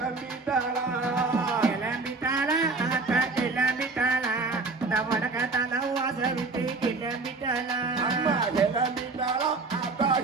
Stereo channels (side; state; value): left; quieter; 3.8 dB